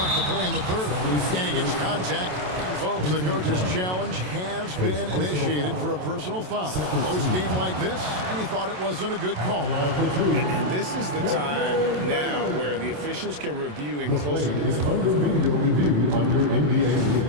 to play in the third. And he gets contact. Folks, the coach's challenge has been initiated for a personal foul. Close game like this, and he thought it wasn't a good call. And this is the time now where the officials can review in closer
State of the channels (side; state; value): left; late; 27 ms